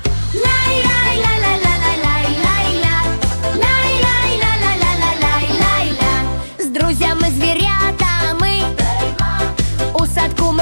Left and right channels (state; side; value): inverted; both; correlation -1.00